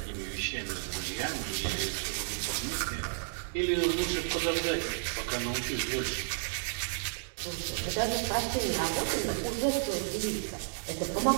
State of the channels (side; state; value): left; silent; digital silence